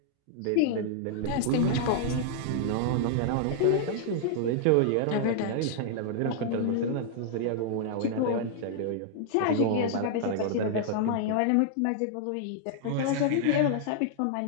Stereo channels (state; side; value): different; both; correlation -0.01